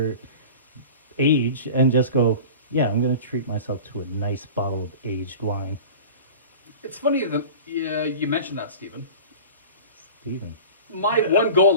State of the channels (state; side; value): inverted; both; correlation -0.37